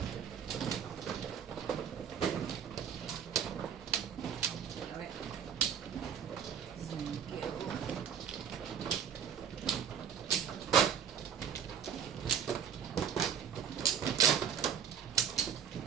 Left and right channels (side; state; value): left; quieter; 8.0 dB